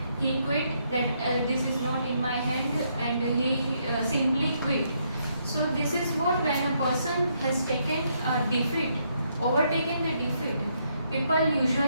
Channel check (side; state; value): both; inverted; correlation -0.75